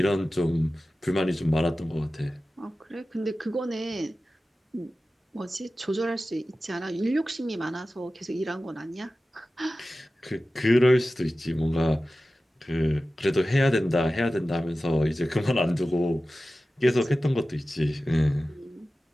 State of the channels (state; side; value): normal; both; correlation 0.95